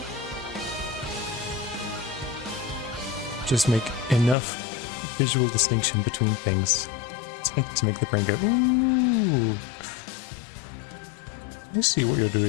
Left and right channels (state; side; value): drops out; right; at 4.4 s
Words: Just make enough visual distinction between things to make the brain go, ooh, I see what you're